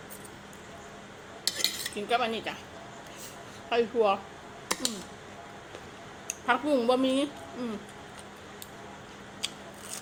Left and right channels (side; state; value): both; identical; correlation 1.00